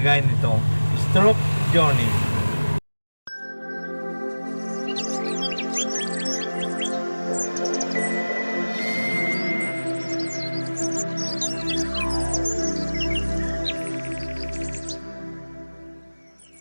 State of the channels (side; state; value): both; inverted; correlation -1.00